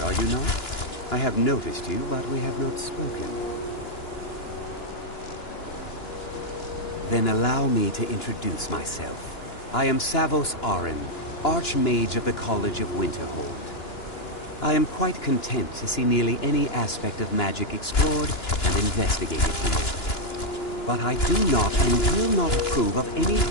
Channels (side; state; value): right; late; 2.9 ms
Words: are you not? I have noticed you, but we have not spoken. Then allow me to introduce myself. I am Savos Arin, Archmage of the College of Winterhold. I am quite content to see nearly any aspect of magic explored and investigated here. But I do not and will not approve of any